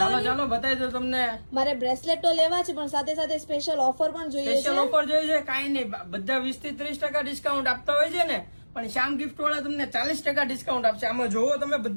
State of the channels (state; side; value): inverted; both; correlation -1.00